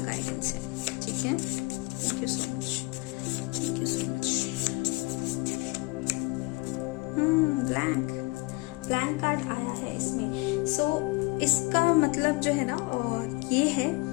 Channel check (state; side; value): quieter; right; 25.6 dB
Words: है, ठीक है? Thank you so much, thank you so much. Blank card आया है इसमें। सो इसका मतलब जो है ना, और ये है